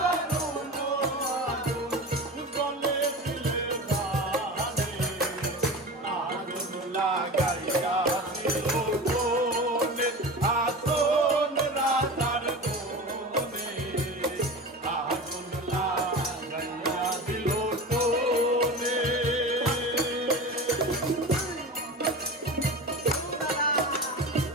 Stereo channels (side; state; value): both; normal; correlation 0.31